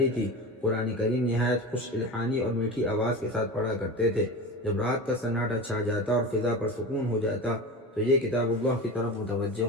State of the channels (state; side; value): normal; both; correlation 0.29